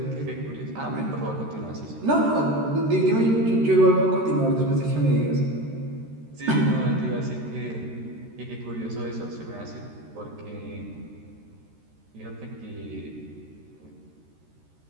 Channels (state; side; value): late; left; 13 ms